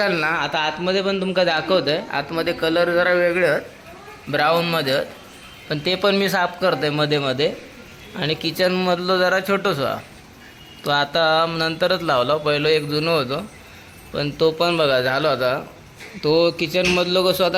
ना आता आतमध्ये पण तुमका दाखवत आहे. आतमध्ये कलर जरा वेगळे आहेत ब्राऊनमध्ये आहेत पण ते पण मी साफ करतो आहे मध्ये मध्ये. आणि किचनमधलं जरा छोटंसं तो आता नंतरच लावला. पहिलं एक जुनं होतं पण तो पण बघा झालो आता. तो किचनमधलं कसं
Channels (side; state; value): both; identical; correlation 1.00